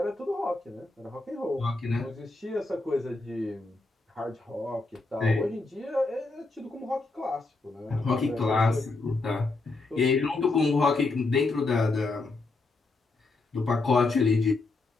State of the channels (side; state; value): right; quieter; 3.4 dB